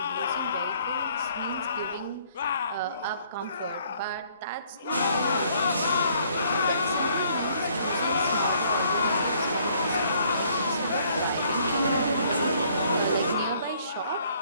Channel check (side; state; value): both; inverted; correlation -0.63